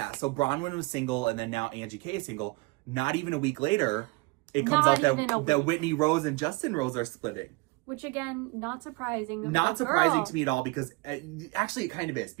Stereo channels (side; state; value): left; quieter; 25.9 dB